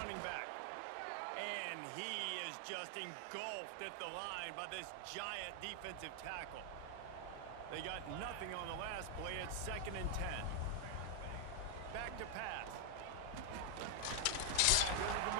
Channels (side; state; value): both; different; correlation 0.00